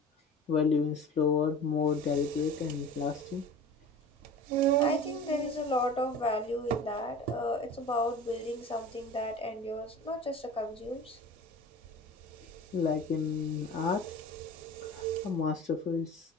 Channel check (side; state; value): both; normal; correlation 0.38